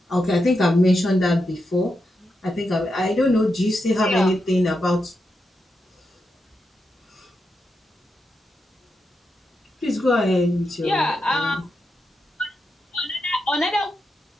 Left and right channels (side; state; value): both; normal; correlation 0.86